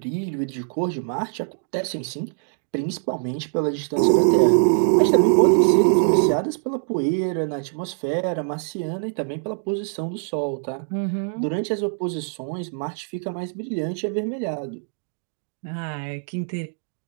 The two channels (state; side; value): silent; left; digital silence